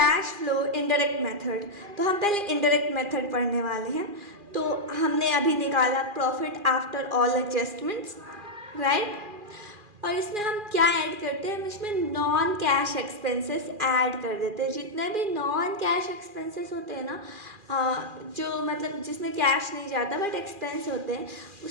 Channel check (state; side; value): late; left; 2.4 ms